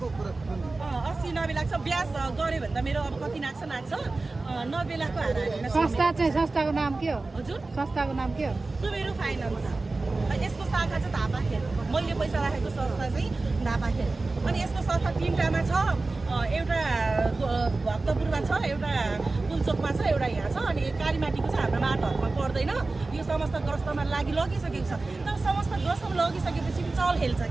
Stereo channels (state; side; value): quieter; left; 3.4 dB